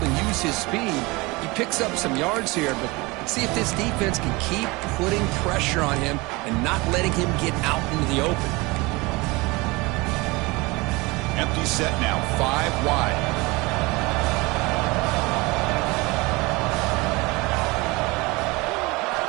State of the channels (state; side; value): quieter; left; 24.0 dB